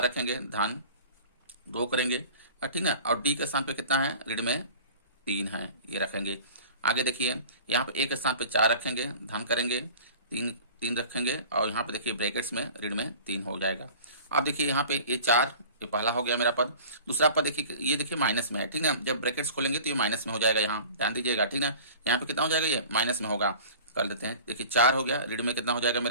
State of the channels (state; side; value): inverted; both; correlation -0.42